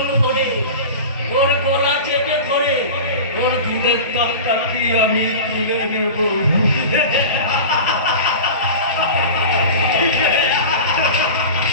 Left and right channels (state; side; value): inverted; both; correlation -0.31